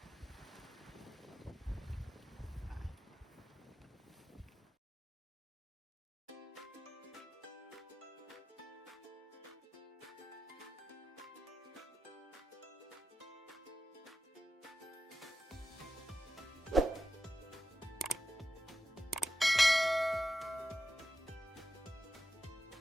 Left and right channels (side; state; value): both; normal; correlation 0.91